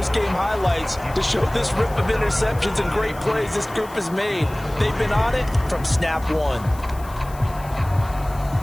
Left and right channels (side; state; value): left; noise; hiss, 21 dB below the sound